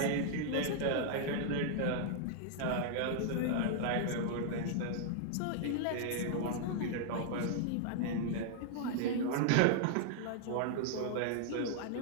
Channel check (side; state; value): both; different; correlation -0.01